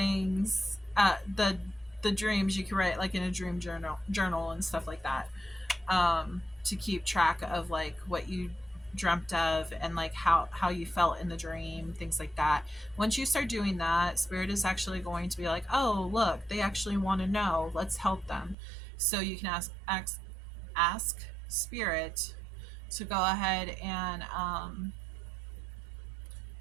The dreams you can write like in a dream journal and stuff like that, to keep track of like what you dreamt of and like how you felt in the dream, things like that. Once you start doing that, spirit is actually going to be like, oh look, they actually want to know, let's help them. So you can ask spirit to go ahead and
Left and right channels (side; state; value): left; drops out; at 18.6 s